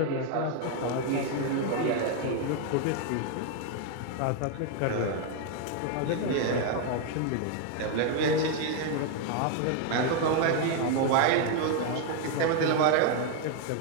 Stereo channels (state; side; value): different; both; correlation 0.01